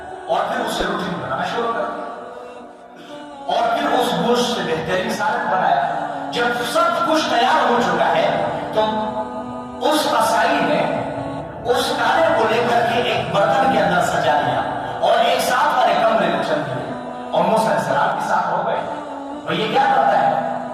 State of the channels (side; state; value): both; identical; correlation 1.00